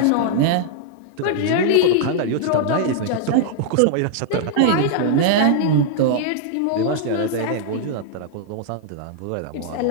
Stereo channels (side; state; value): both; different; correlation -0.01